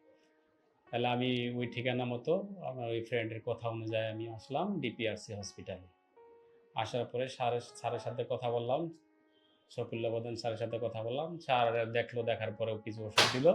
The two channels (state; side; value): identical; both; correlation 1.00